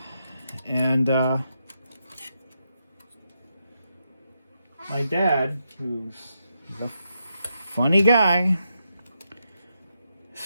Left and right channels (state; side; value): inverted; both; correlation -0.83